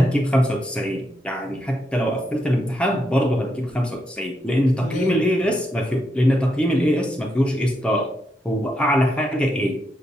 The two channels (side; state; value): both; normal; correlation 0.81